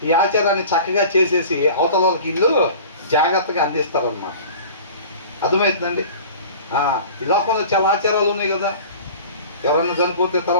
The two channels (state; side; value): inverted; both; correlation -0.41